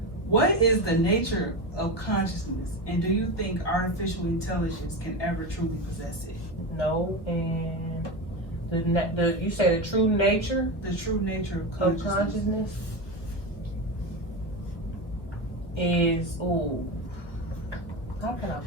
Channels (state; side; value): late; right; 1.0 ms